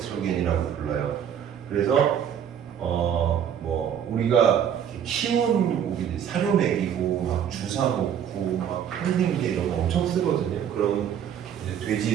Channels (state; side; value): quieter; left; 9.0 dB